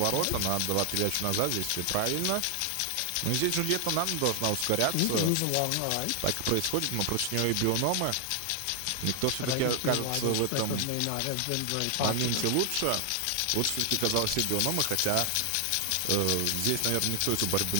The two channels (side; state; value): both; different; correlation 0.00